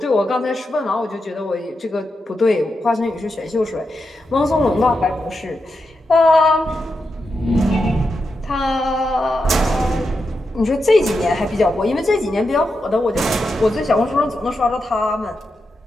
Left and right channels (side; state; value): both; normal; correlation 0.87